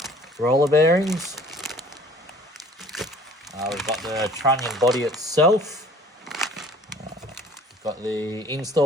roller bearings. We've got the trunnion body itself. We've got the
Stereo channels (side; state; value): both; normal; correlation 0.51